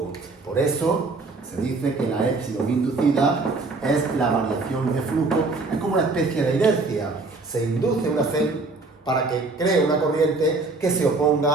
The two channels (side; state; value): left; quieter; 3.6 dB